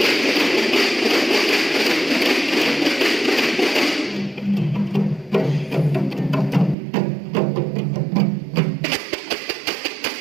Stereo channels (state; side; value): drops out; left; at 6.8 s